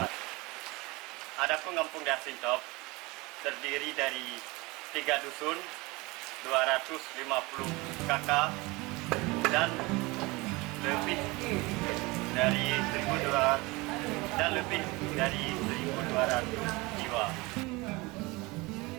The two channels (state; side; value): quieter; left; 23.9 dB